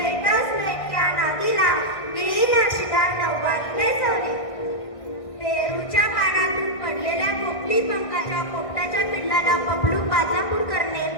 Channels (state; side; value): late; right; 1.5 ms